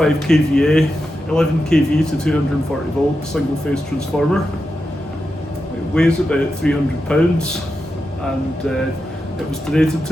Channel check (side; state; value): both; normal; correlation 0.89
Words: kVA, 11 kV to 240 volt single phase transformer. It weighs about 300 pounds and it was donated